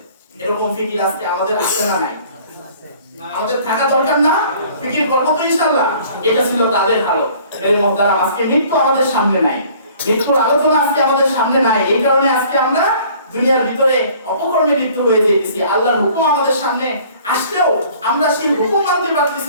এরকম ফিকির আজকে আমাদের আছে না নাই? আমাদের থাকা দরকার না? ফিকির করবো তো ইনশাআল্লাহ। এটা ছিল তাদের হালত। মেরে মুহতারাম, আজকে মৃত্যু আমাদের সামনে নাই, মৃত্যুর আলোচনা আজকে আমাদের সামনে নাই। এই কারণে আজকে আমরা দুনিয়ার ভিতরে অপকর্মে লিপ্ত হয়ে যেতেছি। আল্লাহর হুকুম আমাদের সামনে আসলেও আমরা সেই হুকুম মানতে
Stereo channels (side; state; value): both; inverted; correlation -0.53